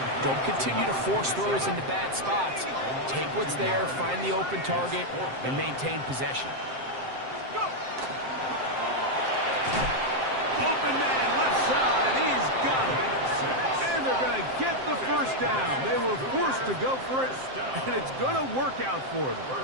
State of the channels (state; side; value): late; left; 7.6 ms